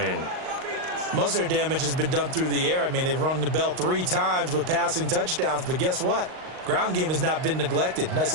Most of their damage has been done through the air. I mean, they've rung the bell 3 times with passing touchdowns, but guess what? Ground game has not been neglected. Nice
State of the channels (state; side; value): late; left; 38 ms